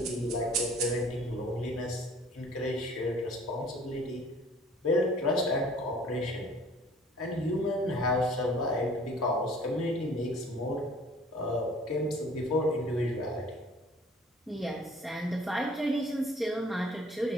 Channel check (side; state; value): both; normal; correlation 0.52